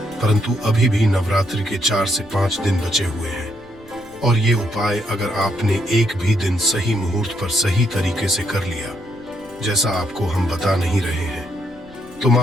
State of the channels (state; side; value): noise; left; rumble, 25 dB below the sound